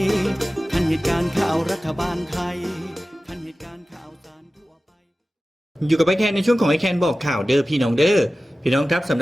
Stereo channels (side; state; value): both; normal; correlation 0.95